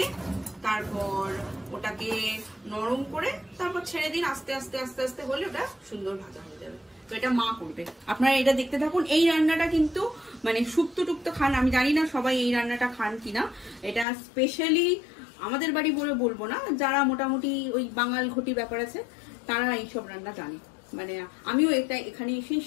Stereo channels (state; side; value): drops out; right; at 14.1 s